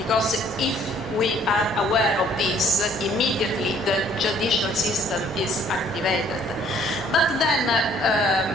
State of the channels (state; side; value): normal; both; correlation 0.60